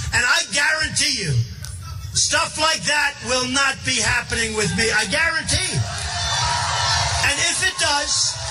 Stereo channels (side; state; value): both; identical; correlation 1.00